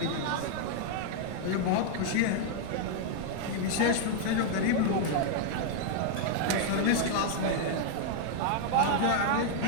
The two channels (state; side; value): different; both; correlation 0.00